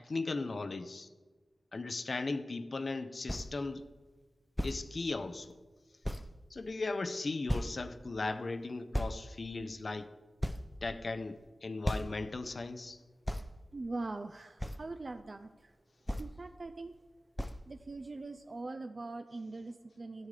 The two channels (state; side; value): normal; both; correlation 0.96